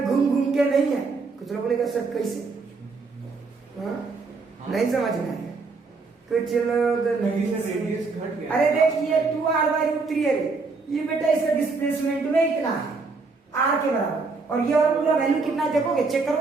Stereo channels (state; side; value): quieter; left; 4.2 dB